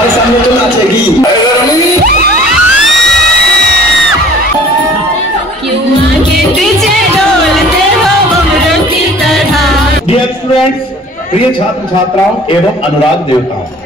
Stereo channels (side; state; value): both; normal; correlation 0.49